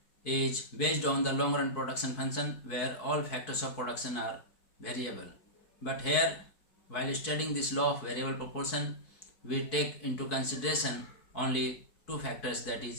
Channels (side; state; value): right; late; 4.6 ms